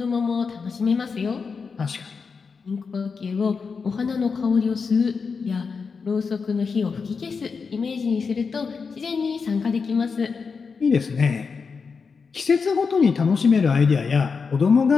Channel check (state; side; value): quieter; right; 5.2 dB